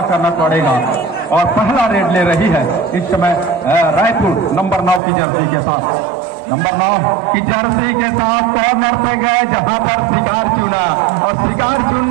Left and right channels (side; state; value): left; drops out; at 5.0 s